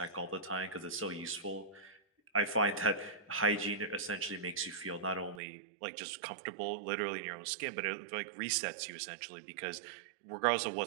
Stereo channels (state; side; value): drops out; left; at 5.4 s